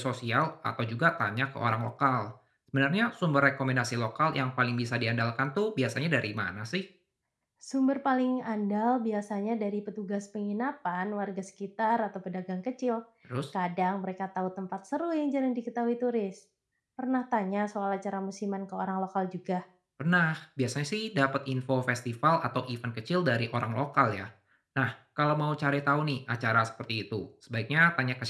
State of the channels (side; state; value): both; identical; correlation 1.00